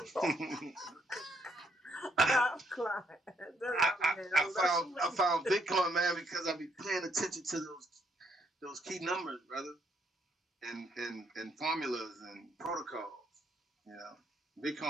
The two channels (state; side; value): normal; both; correlation 0.72